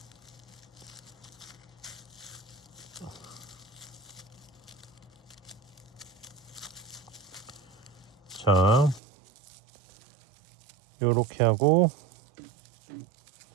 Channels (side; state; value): left; drops out; at 9.0 s